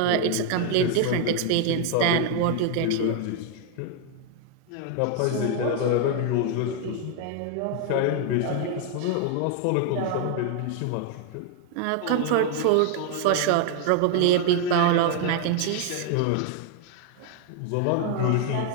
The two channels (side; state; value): both; different; correlation 0.01